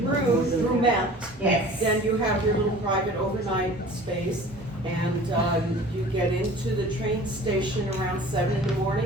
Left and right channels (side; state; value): both; normal; correlation 0.44